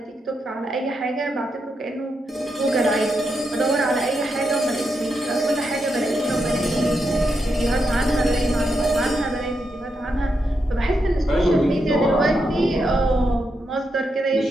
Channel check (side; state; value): both; normal; correlation 0.84